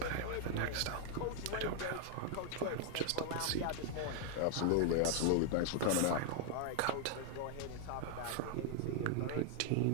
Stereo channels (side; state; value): both; different; correlation 0.00